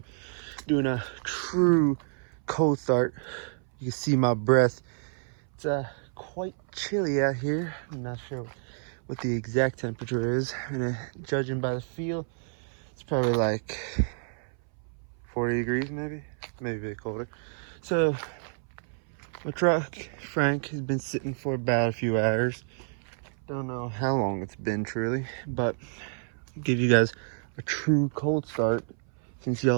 doing a true cold start. You can see my breath. It's quite chilly out here. I'm not sure what the exact temperature is, and judging by the feel, it's probably like 40 degrees, maybe a bit colder. So my truck, Frank, has been sitting for about a few hours. Don't know how long it's been truly, but I'll give you guys a true cold start since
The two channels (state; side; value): silent; left; 58 dB below the other